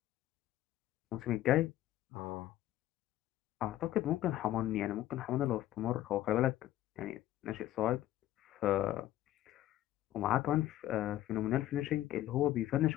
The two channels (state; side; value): quieter; right; 13.8 dB